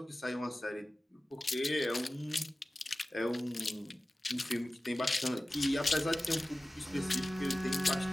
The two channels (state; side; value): normal; both; correlation 0.96